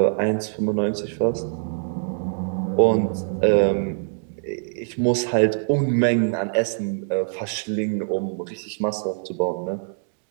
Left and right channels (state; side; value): silent; left; digital silence